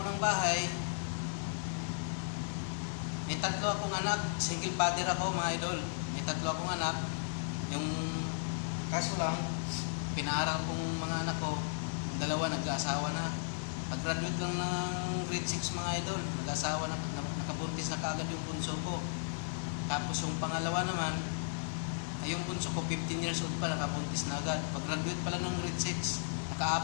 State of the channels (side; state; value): right; silent; digital silence